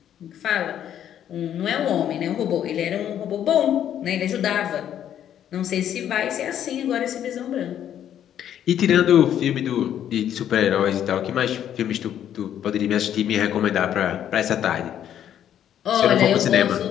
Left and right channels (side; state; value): right; quieter; 10.2 dB